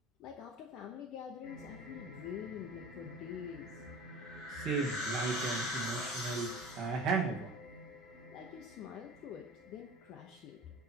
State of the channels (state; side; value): normal; both; correlation 0.38